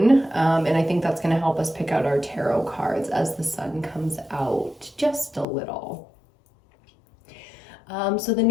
and I think that's going to help us pick out our tarot cards as the sun comes out just a little. So the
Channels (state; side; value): drops out; right; at 5.5 s